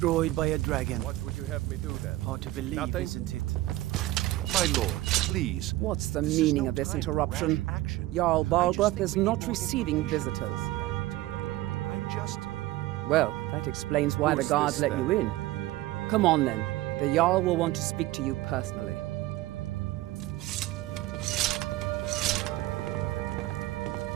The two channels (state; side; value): quieter; left; 17.1 dB